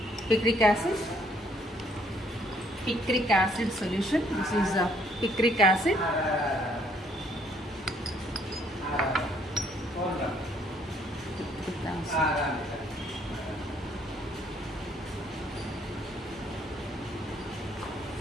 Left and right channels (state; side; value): normal; both; correlation 0.65